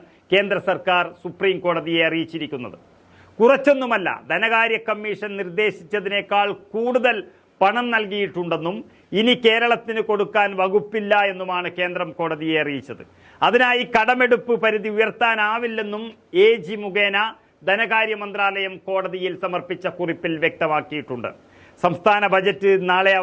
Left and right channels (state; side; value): identical; both; correlation 1.00